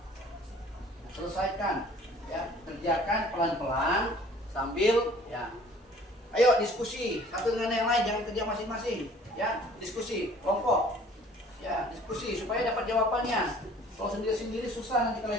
Nah, selesaikan, ya, kerjakan pelan-pelan sambil ya. Ayo diskusi satu dengan yang lain, jangan kerja masing-masing. Ya, diskusi kelompok. Ya, diskusi supaya dapat jawabannya. Kalau sendiri-sendiri susah nanti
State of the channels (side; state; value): both; normal; correlation 0.53